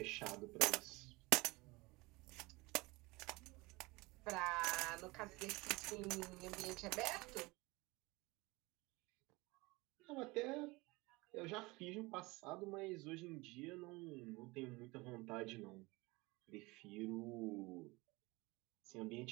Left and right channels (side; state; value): left; quieter; 23.4 dB